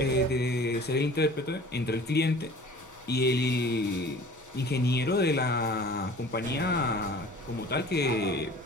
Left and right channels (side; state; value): both; normal; correlation 0.45